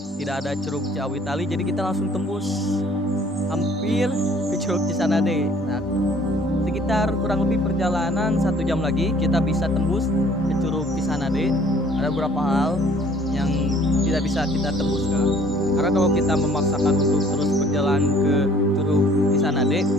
tidak ada Curug Ciawitali, jadi kita langsung tembus hampir ke Curug Cisanade. Nah, sekitar kurang lebih perjalanan 1 jam lagi kita bisa tembus ke Curug Cisanade. Ada beberapa hal yang tidak bisa kita tembus kan. Karena kalau kita memaksakan untuk terus berjalan ke Curug Cisanade,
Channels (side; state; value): both; normal; correlation 0.56